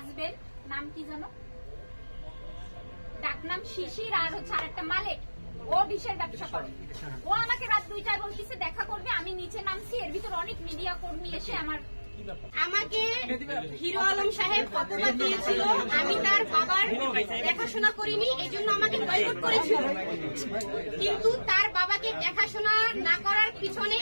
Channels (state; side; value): inverted; both; correlation -1.00